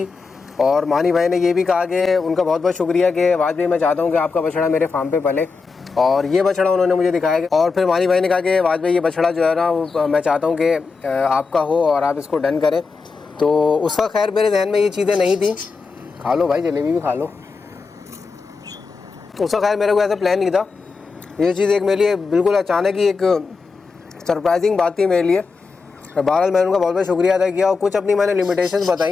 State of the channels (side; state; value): right; quieter; 4.6 dB